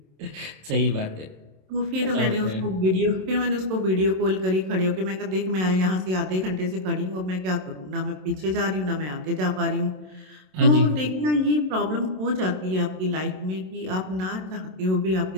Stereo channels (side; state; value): left; late; 27 ms